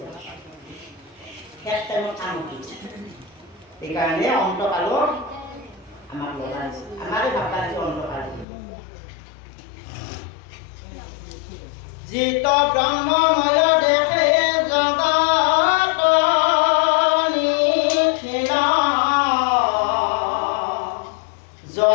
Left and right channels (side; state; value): right; drops out; at 8.5 s